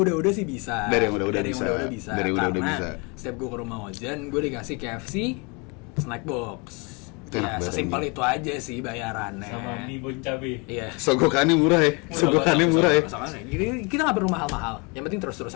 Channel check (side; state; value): right; quieter; 30.7 dB